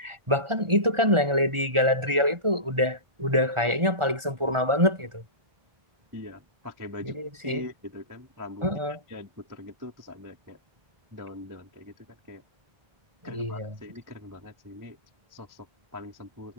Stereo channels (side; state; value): left; late; 1.4 ms